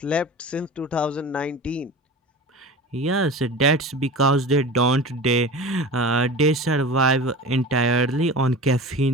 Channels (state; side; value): normal; both; correlation 0.33